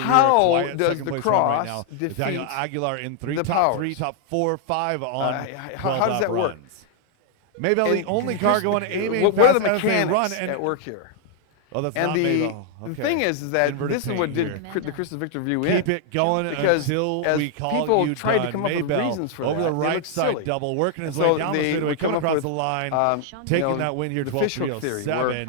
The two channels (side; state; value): both; different; correlation 0.00